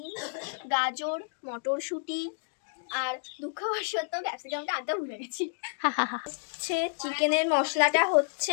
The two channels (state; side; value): silent; right; digital silence